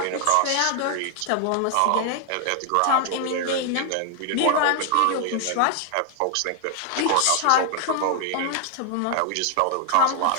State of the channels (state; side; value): different; both; correlation 0.00